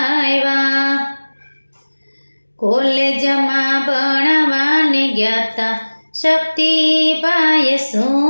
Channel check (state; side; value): inverted; both; correlation -1.00